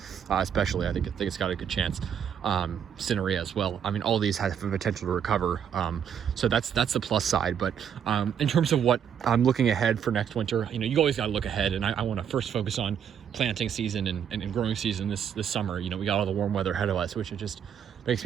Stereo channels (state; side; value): quieter; left; 8.4 dB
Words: especially. I think it's got a good chance. Cinerea as well. I mean, all these have the potential to recover. So that's the plus side. But in terms of what I'm looking ahead for next winter, you know, you always got to look ahead, and I want to first focus on planting season and growing season this summer. You know, we got all the warm weather ahead of us, which it just makes